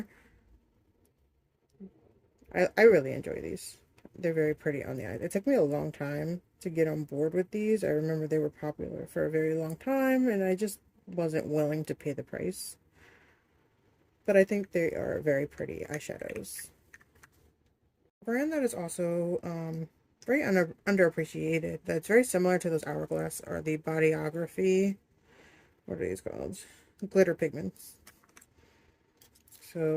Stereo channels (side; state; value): both; identical; correlation 1.00